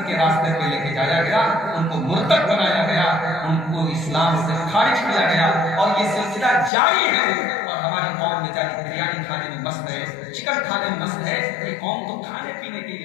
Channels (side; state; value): right; drops out; at 6.7 s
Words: के रास्ते पे लेके जाया गया, उनको मुर्तद बनाया गया, उनको इस्लाम से खारिज किया गया। और ये सिलसिला जारी है। और हमारी कौम में जारी बिरयानी खाने में मस्त है, चिकन खाने में मस्त है। ये कौम तो खाने पीने के